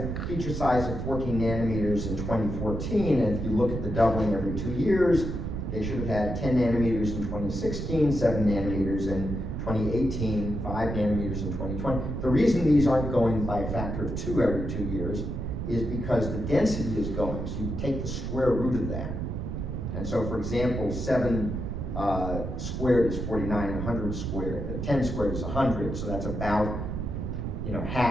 feature size of 14 nanometers in 2014, and if you look at the doubling every 2 years, they should have had 10 nanometers in 2016, 7 nanometers in 2018, 5 nanometers in 2020. The reason these aren't going by a factor of 2 every 2 years is because the density is going, so you take the square root of that. And so, for example, 7 squared is 49, and 100 squared, 10 squared is 100, so that's about, you know,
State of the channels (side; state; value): right; noise; rumble, 4 dB below the sound